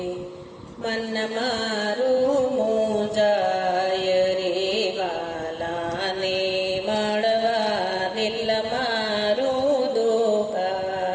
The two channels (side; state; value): both; identical; correlation 1.00